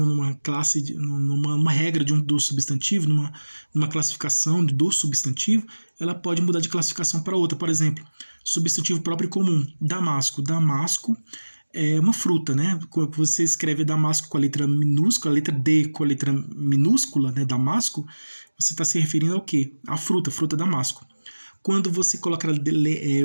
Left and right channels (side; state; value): both; inverted; correlation -1.00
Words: classe, numa regra do substantivo, numa classificação do substantivo, ela pode mudar de classificação para outra. Por exemplo, substantivo próprio e comum. Damasco. Damasco é uma fruta, né? Quando você escreve Damasco com a letra minúscula, a letra D com a letra minúscula, né? Damasco, você está se referindo ao quê? A fruta Damasco. Quando você coloca,